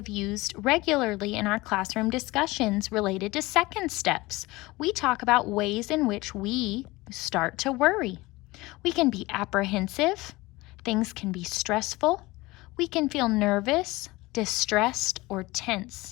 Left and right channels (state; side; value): quieter; right; 21.1 dB